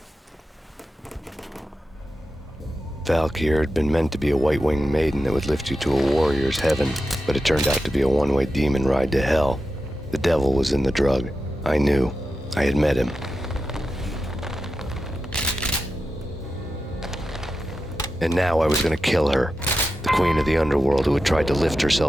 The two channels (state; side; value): normal; both; correlation 0.91